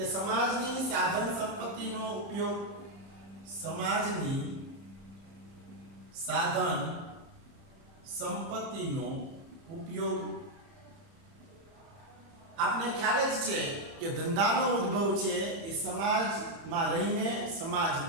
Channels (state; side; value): late; left; 30 ms